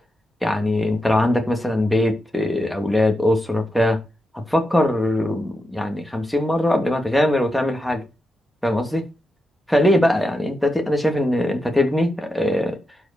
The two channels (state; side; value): normal; both; correlation 0.87